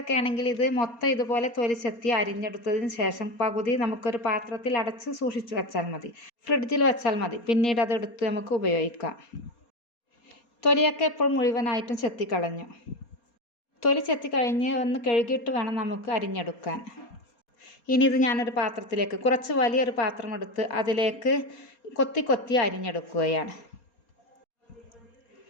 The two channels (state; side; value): late; right; 4.3 ms